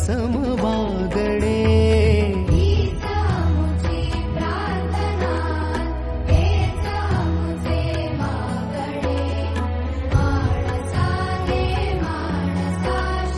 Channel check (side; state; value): both; identical; correlation 1.00